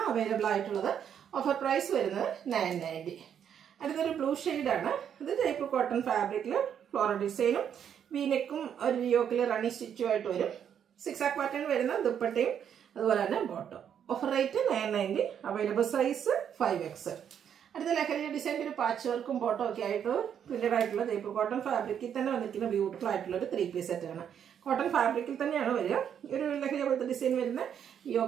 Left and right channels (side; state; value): left; quieter; 8.6 dB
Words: അവൈലബിൾ ആയിട്ടുള്ളത്. ഓഫർ പ്രൈസ് വരുന്നത് 990. അടുത്തൊരു ബ്ലൂ ഷെയ്ഡാണ്. ഇത് ജയ്പൂർ കോട്ടൺ ഫാബ്രിക്കിൽ ഫ്ലോറൽ ഡിസൈനും വീനെക്കും ഒരു യോക്കിൽ റണ്ണിങ് സ്റ്റിച്ചുമായിട്ട് വരും. 6 പാറ്റേൺ വരുന്ന ദുപ്പട്ടയും അതുപോലെ തന്നെ bottom. Offer rate 990. Available size 5XL. അടുത്ത ലഹരി ഡിസൈൻ്റെ ഒരു പാച്ച് വർക്കും ബോട്ടം ഒക്കെ ആയിട്ട് പ്രിന്റഡ് ആയിട്ടുള്ള ജയ്പൂർ കോട്ടൺ ഫാബ്രിക്കിൽ തന്നെ വന്നിരിക്കുന്ന ബ്യൂട്ടിഫുൾ ആയിട്ടുള്ള ഒരു 3 പീസ് സെറ്റാണ്. കോട്ടൺ ഫാബ്രിക്കിൽ തന്നെയാണ് വരിക. ഒരു ലഹരി പോലത്തെ ഡിസൈൻ വരുന്ന